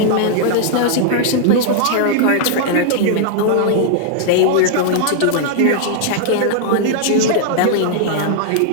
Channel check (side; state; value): both; different; correlation -0.01